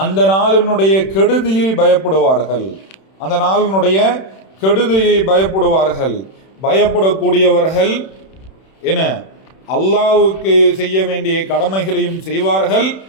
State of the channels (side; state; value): right; late; 31 ms